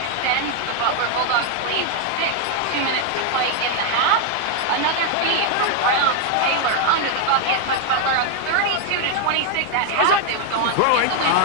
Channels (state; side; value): different; both; correlation 0.00